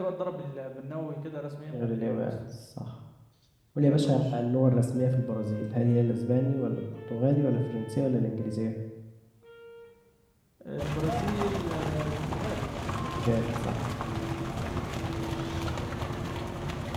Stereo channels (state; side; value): identical; both; correlation 1.00